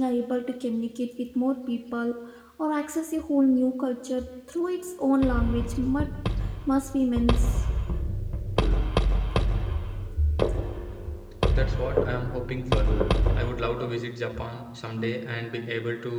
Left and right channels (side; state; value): both; identical; correlation 1.00